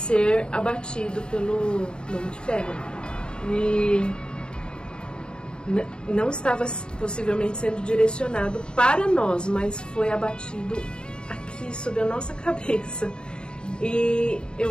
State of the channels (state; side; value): late; right; 0.053 ms